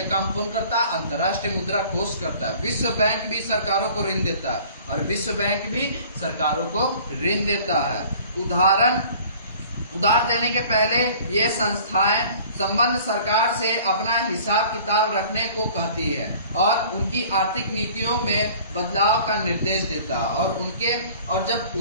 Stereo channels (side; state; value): both; inverted; correlation -0.49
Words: काम कौन करता है? अंतर्राष्ट्रीय मुद्रा कोष करता है। विश्व बैंक भी सरकारों को ऋण देता है और विश्व बैंक भी सरकारों को ऋण देता है। उधार देने के पहले ये संस्थाएं संबंध सरकार से अपना हिसाब किताब रखने को कहती है और उनकी आर्थिक नीतियों में बदलाव का निर्देश देता है। और जब